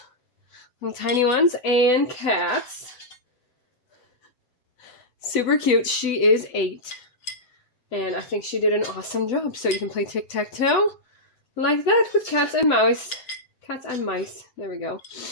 little tiny ones, and cats. Super cute. She is 8. And I think she did an awesome job. So you can play tic-tac-toe like that with cats and mice. Cats and mice. There we go.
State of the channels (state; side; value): late; right; 8.0 ms